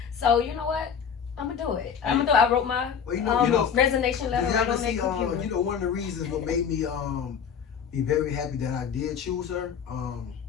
So, you know what? I'm going to do it. I wrote my Well, you know, resignation letter you right ever on that see, computer. you know, one of the reasons what made me be very happy that I did choose her.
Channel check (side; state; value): right; quieter; 7.3 dB